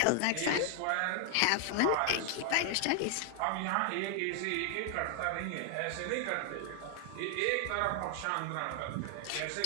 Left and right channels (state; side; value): different; both; correlation 0.00